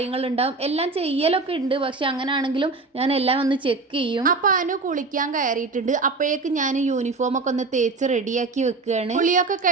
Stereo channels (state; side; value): quieter; left; 3.9 dB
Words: ഉണ്ടാവും. എല്ലാം ചെയ്യലൊക്കെ ഉണ്ട്. പക്ഷെ അങ്ങനെയാണെങ്കിലും ഞാൻ എല്ലാം ഒന്ന് ചെക്ക് ചെയ്യും. അപ്പൊ അനു കുളിക്കാൻ കയറിയിട്ടുണ്ട്. അപ്പോഴേക്ക് ഞാൻ യൂണിഫോം ഒക്കെ ഒന്ന് തേച്ച് റെഡിയാക്കി വെക്കുകയാണ്. കുളിയൊക്കെ